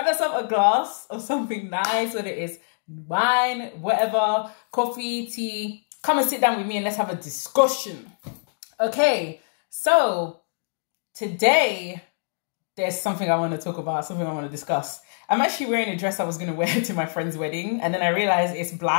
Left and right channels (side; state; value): right; silent; digital silence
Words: yourself a glass of something nice, whether it is wine, whatever, coffee, tea. Come and sit down with me and let's have a discussion. Okay, so today there's something I want to talk about, something I want to discuss. I'm actually wearing a dress I was going to wear to my friend's wedding, and then I realized it's